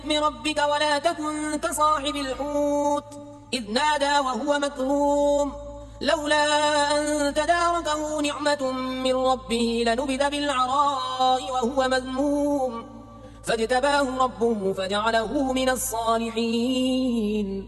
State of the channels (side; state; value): both; identical; correlation 1.00